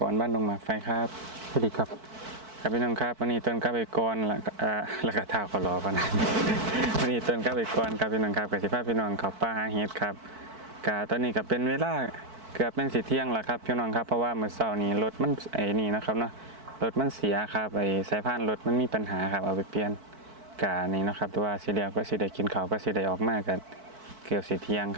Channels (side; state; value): left; late; 4.5 ms